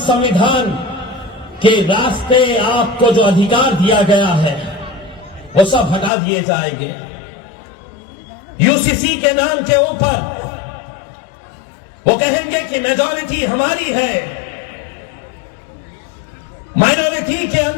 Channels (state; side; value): drops out; right; at 6.1 s